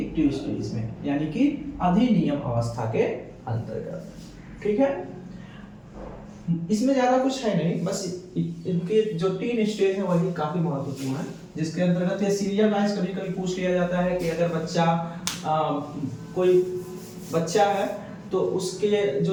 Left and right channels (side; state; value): both; identical; correlation 1.00